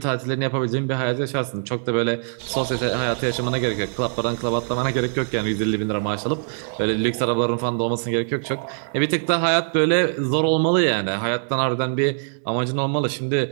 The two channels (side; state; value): left; silent; digital silence